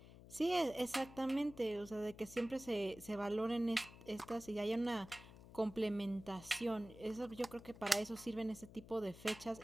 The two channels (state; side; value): noise; left; hum, 18 dB below the sound